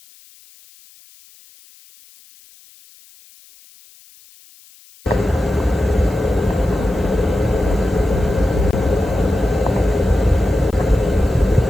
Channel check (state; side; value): noise; left; hiss, 26 dB below the sound